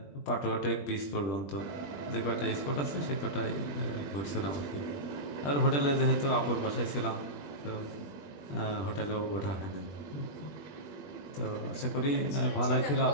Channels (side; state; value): right; late; 21 ms